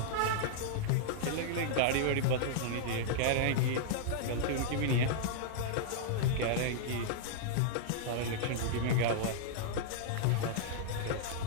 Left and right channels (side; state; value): both; different; correlation -0.02